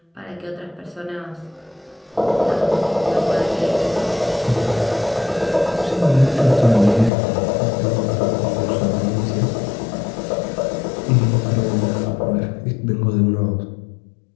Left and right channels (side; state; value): right; drops out; at 7.1 s